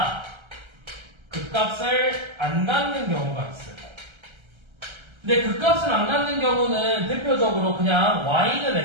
극값을 안 갖는 경우가 있어요. 근데 극값을 안 갖는 경우는 대표적으로 그냥 y는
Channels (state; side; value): late; left; 1.3 ms